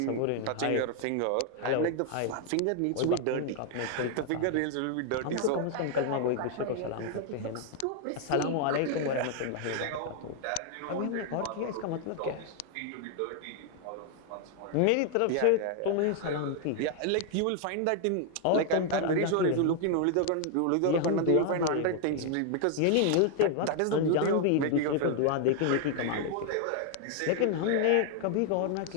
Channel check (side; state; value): both; different; correlation 0.00